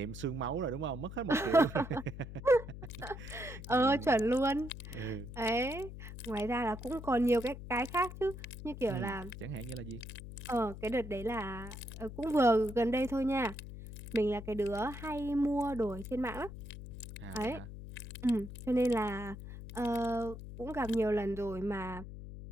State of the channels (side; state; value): left; noise; hum, 11 dB below the sound